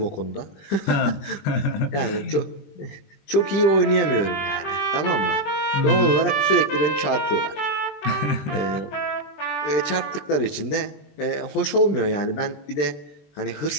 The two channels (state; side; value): late; right; 21 ms